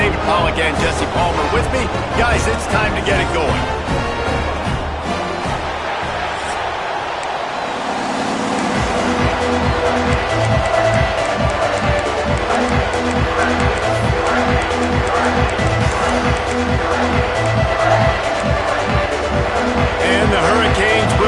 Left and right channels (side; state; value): both; identical; correlation 1.00